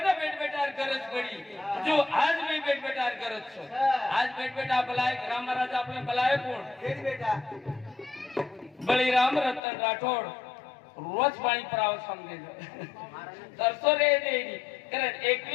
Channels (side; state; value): right; drops out; at 9.6 s